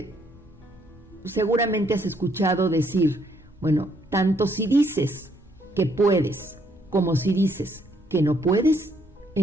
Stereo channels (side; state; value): both; normal; correlation 0.69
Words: seguramente has escuchado decir, bueno, tanto si dices que puedes como si dices que no puedes,